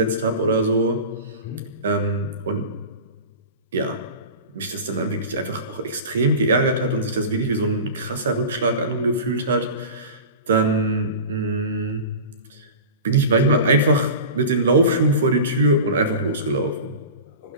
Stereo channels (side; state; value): both; inverted; correlation -0.33